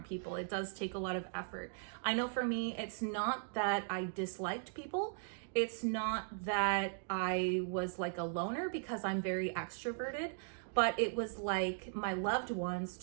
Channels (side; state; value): left; silent; digital silence